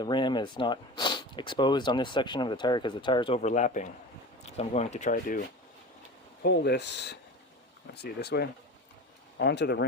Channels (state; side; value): normal; both; correlation 0.32